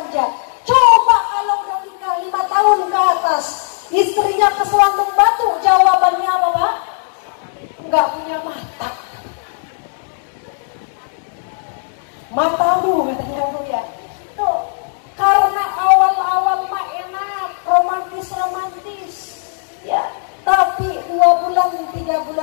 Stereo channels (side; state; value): right; silent; digital silence